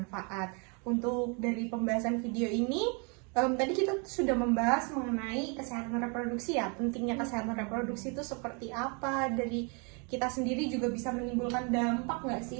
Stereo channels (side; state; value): left; quieter; 34.1 dB